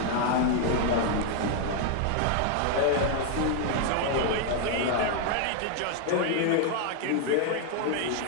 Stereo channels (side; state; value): both; different; correlation 0.00